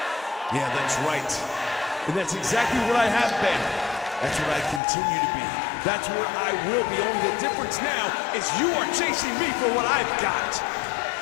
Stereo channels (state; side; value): drops out; right; at 4.8 s